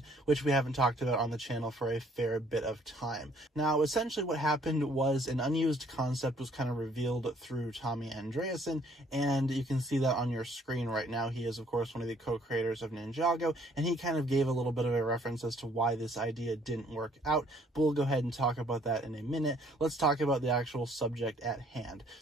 which we haven't talked about on the channel for a fair bit of time. Now, essentially what happened was an unused concept was kind of revealed through Tommy Andreasen, and you can see that on your screen right now. He is, of course, one of the co-creators of Ninjago, and he kind of gave a little bit of a reference as to why this idea didn't work out, but we'll go ahead and talk about that in a minute. Let's talk about the actual subject at hand.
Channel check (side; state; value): both; normal; correlation 0.62